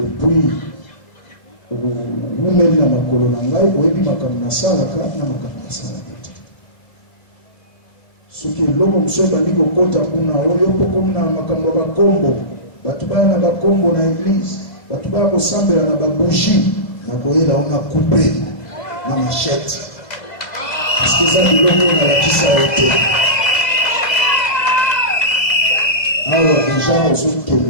ou mène na makolo na ngai, au yebi makamna salaka na makamna salaka. soki eloko mosusu ebandi kokota kuna oyo mpo komi na makambo ya bakombo bato baya na bakombo na eglise bato baya kosambela na babougie na koyela o na coupe na machete parceke eza biloko nalakisa yo te awa deja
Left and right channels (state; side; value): late; right; 2.0 ms